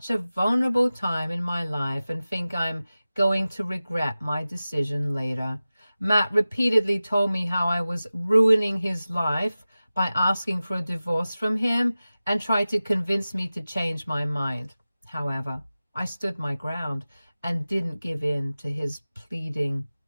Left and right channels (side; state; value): both; inverted; correlation -0.96